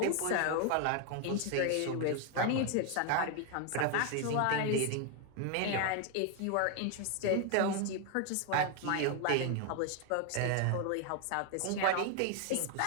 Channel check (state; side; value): different; both; correlation 0.01